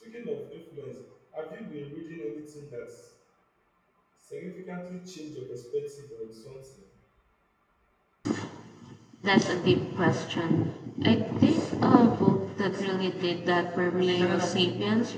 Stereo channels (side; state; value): both; identical; correlation 1.00